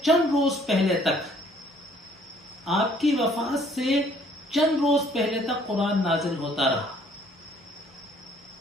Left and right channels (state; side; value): normal; both; correlation 0.60